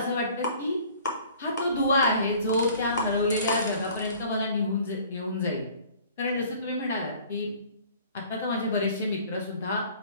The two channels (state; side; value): inverted; both; correlation -0.51